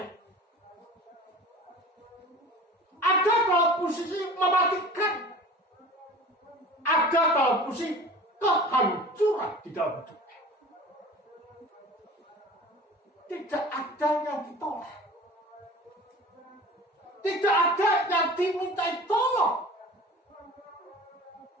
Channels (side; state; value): both; normal; correlation 0.40